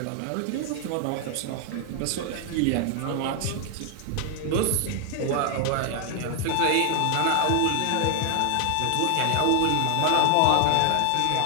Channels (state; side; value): different; both; correlation 0.00